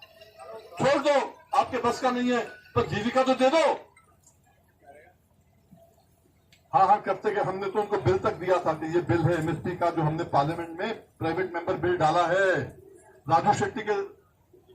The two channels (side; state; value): both; identical; correlation 1.00